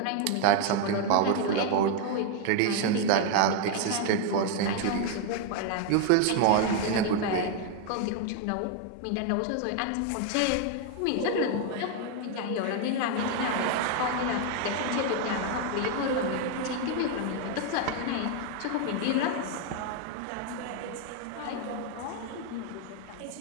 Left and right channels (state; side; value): different; both; correlation 0.01